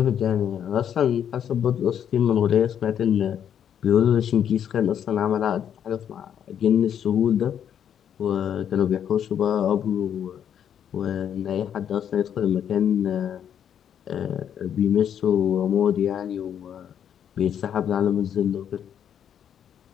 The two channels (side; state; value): right; quieter; 9.1 dB